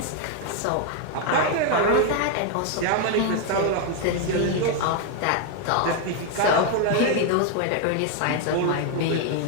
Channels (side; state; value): both; different; correlation 0.01